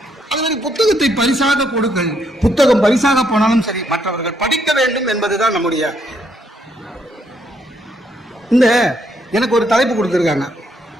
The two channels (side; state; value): both; normal; correlation 0.73